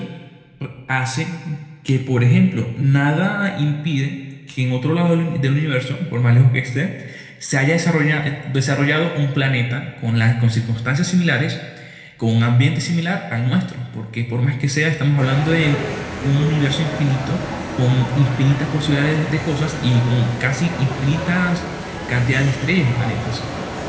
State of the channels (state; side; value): identical; both; correlation 1.00